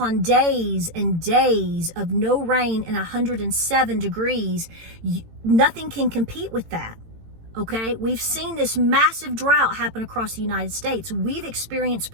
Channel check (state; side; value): late; left; 18 ms